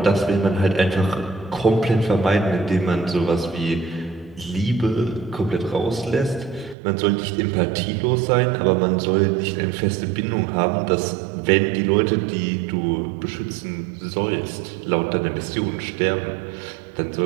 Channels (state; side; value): drops out; left; at 6.8 s